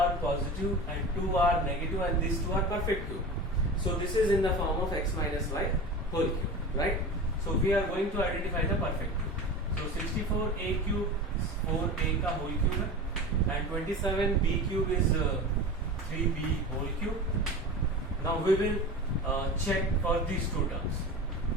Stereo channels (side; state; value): both; normal; correlation 0.31